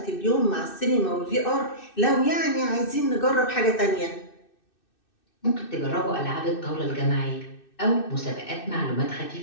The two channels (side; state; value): right; late; 2.6 ms